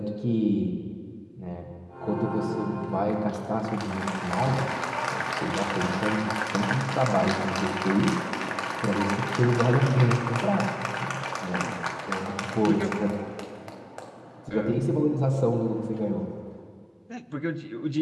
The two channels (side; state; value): both; identical; correlation 1.00